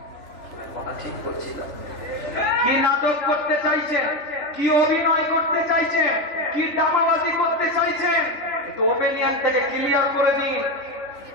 কথা ঠিক বলছিলাম। কি নাটক করতে চাইছেন, কি অভিনয় করতে চাইছেন, কি ড্রামাবাজি করতে চাইছেন, একটু ওপিনিয়ন থেকে ক্লিয়ার করে দিন।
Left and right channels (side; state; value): right; late; 3.4 ms